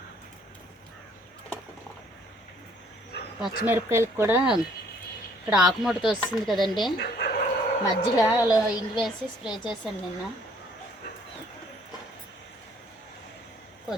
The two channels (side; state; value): both; normal; correlation 0.61